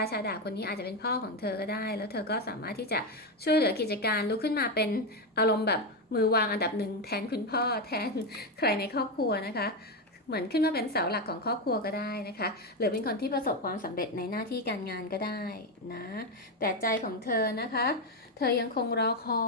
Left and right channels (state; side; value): normal; both; correlation 0.10